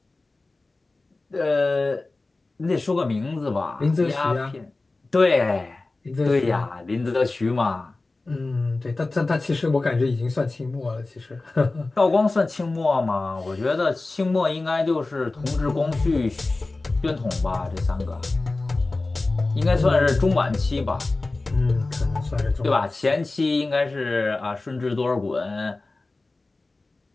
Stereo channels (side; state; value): right; quieter; 3.3 dB